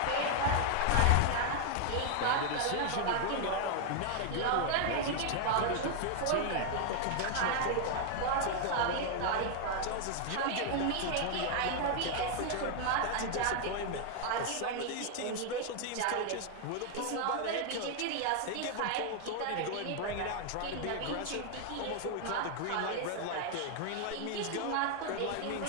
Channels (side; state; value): both; different; correlation 0.00